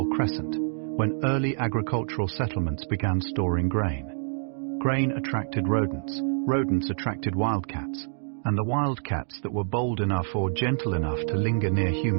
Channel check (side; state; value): left; silent; digital silence